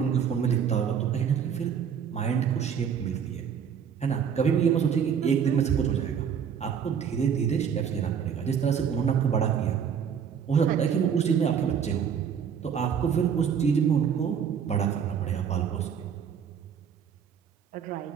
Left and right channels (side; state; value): left; quieter; 7.6 dB